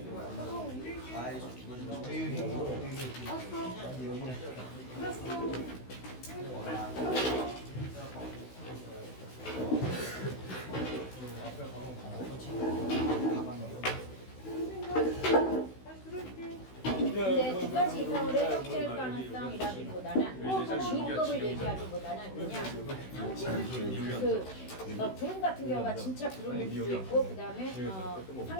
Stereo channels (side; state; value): right; late; 16 ms